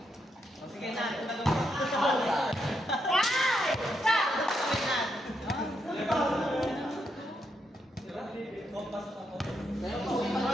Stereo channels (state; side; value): normal; both; correlation 0.80